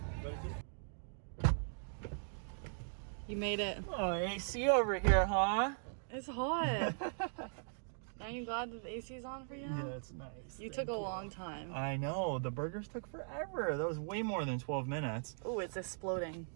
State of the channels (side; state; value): left; silent; digital silence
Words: You made it. Oh, AC over here, huh? It's hot. Aren't you glad that the AC is on for you now? Yeah, it's nice. You took a long time. I know, the burgers took forever. That was way more than 12 minutes. Oh, it's exploding.